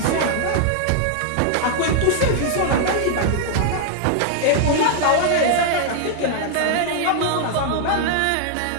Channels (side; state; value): both; different; correlation 0.00